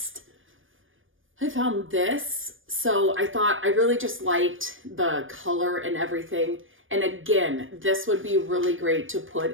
I found this. So I thought I really just liked the color and everything. And again, this would be really great to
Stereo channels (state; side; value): late; left; 0.58 ms